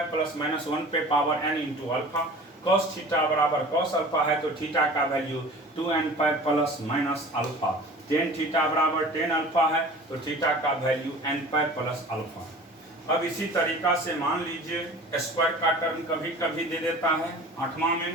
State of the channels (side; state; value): both; normal; correlation 0.42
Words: plus minus 1 पे power n into alpha. Cos theta बराबर कॉस अल्फा है, तो थीटा का value 2n pi plus minus alpha. Tan theta बराबर टेन अल्फा है, तो थीटा का value n pi plus alpha. अब इसी तरीका से मान लीजिए स्क्वायर का टर्म कभी कभी दे देता है। आठवां